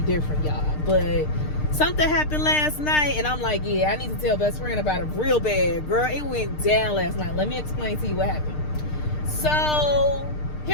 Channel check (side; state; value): right; late; 6.6 ms